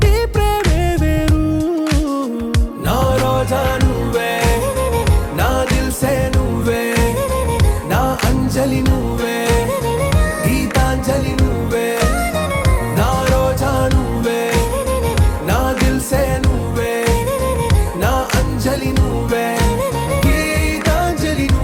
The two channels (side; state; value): both; identical; correlation 1.00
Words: ఈ ప్రేమే వేరు నా రోజా నువ్వే నా దిల్ సే నువ్వే నా అంజలి నువ్వే గీతాంజలి నువ్వే నా రోజా నువ్వే నా దిల్ సే నువ్వే నా అంజలి నువ్వే గీతాంజలి